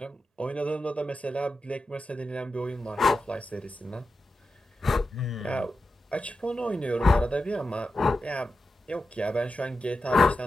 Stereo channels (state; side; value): normal; both; correlation 0.90